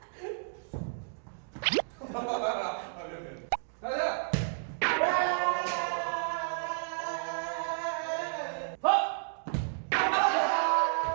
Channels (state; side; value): silent; left; digital silence